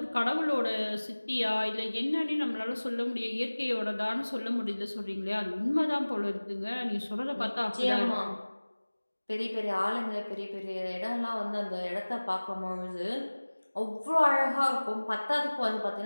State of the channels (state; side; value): inverted; both; correlation -1.00